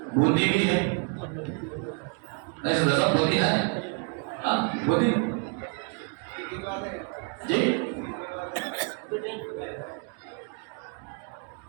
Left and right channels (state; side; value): quieter; left; 34.8 dB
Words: بوندی بھی ہے. ایسے دسا بوندی ہے، ہاں بوندی جی.